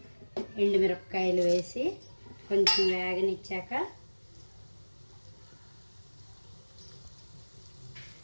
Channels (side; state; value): both; inverted; correlation -1.00